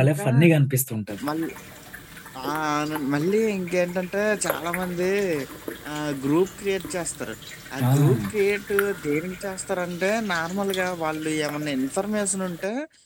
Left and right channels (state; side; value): identical; both; correlation 1.00